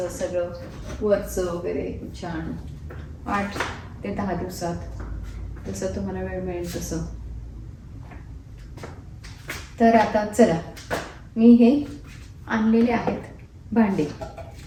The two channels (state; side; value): identical; both; correlation 1.00